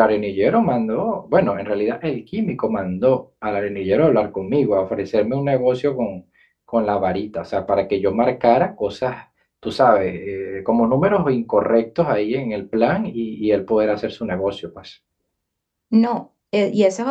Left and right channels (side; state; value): both; identical; correlation 1.00